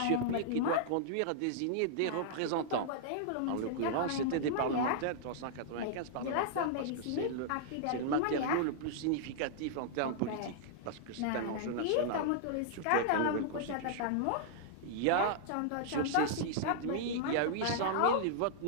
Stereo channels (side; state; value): both; different; correlation -0.01